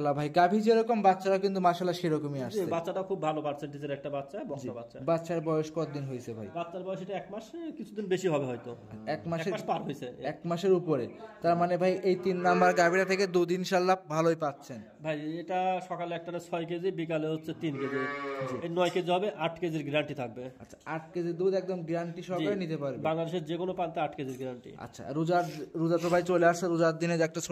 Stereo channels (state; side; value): identical; both; correlation 1.00